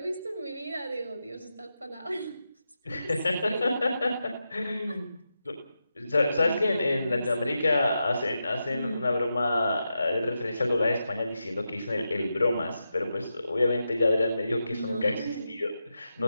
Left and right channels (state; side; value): inverted; both; correlation -0.88